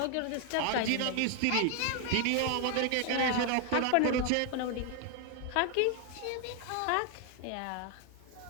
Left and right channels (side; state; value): both; different; correlation 0.00